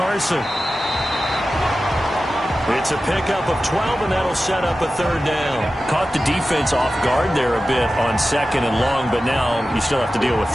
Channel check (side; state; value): both; normal; correlation 0.94